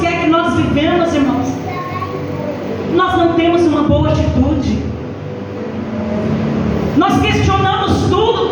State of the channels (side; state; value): both; identical; correlation 1.00